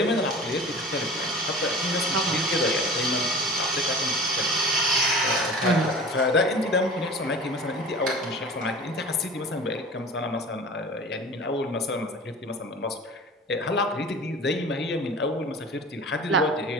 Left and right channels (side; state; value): both; normal; correlation 0.39